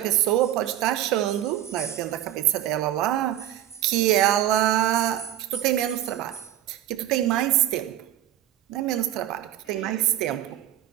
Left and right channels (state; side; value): quieter; left; 12.4 dB